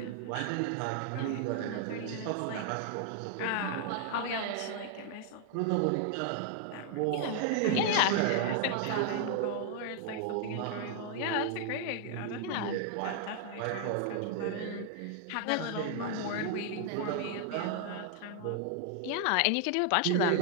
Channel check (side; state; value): both; different; correlation 0.00